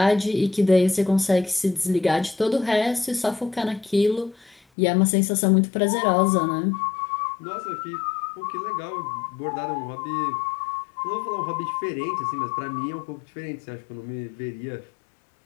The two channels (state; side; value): drops out; right; at 4.6 s